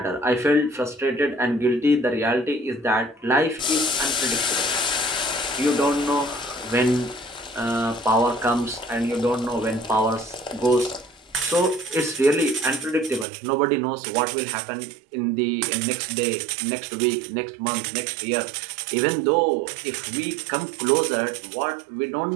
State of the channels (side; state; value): left; drops out; at 13.2 s